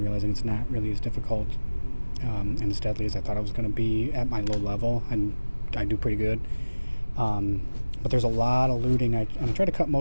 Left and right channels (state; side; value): inverted; both; correlation -1.00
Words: realizing it's not really as difficult and as deadly as I thought it was going to be at my low level, and I do pretty good. But there's a lot of looting. I try to cut